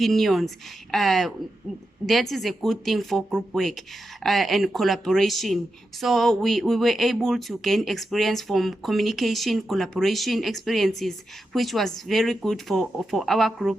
that is a good thing for group work and collaboration. So we were able to gain experience from communication, collaboration experiences, which was very good for our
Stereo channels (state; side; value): normal; both; correlation 0.88